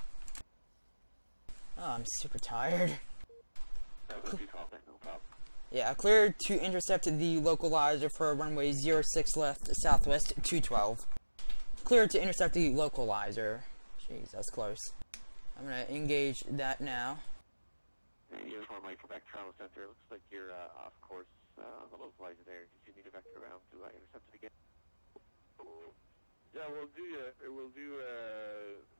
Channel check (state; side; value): inverted; both; correlation -1.00